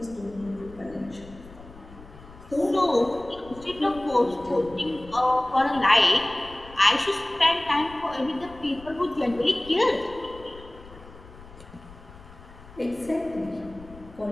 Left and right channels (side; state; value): left; noise; rumble, 19 dB below the sound